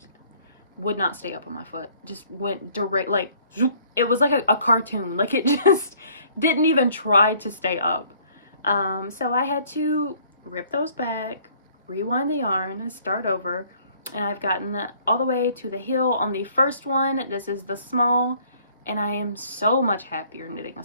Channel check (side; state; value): both; inverted; correlation -0.59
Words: not stay up on my foot. Just went direct, like, zoop. It was like a cartoon. Like, it just didn't even try to stay up. So I had to rip those back, rewind the yarn, and start over. And I've gotten all the way to the heel on the first one. This is the small, and I am so much happier knitting a